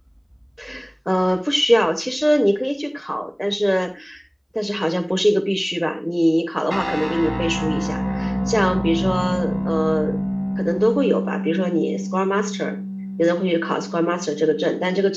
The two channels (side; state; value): both; identical; correlation 1.00